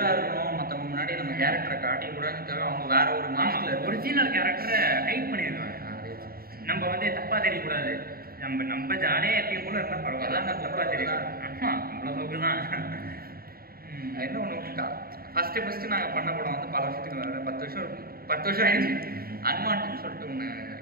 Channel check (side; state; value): left; late; 0.44 ms